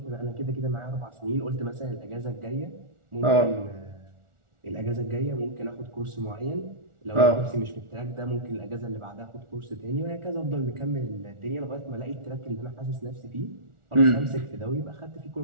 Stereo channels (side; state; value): left; late; 1.4 ms